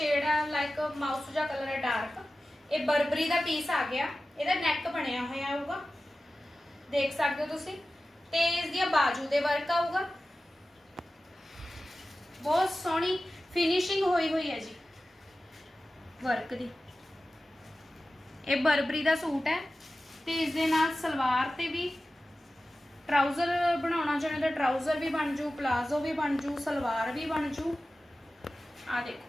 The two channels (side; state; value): both; normal; correlation 0.95